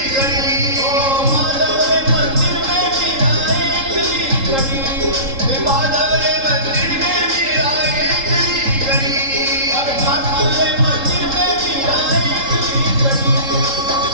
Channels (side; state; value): left; late; 3.8 ms